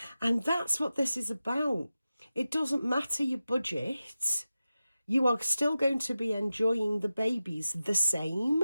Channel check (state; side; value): inverted; both; correlation -0.94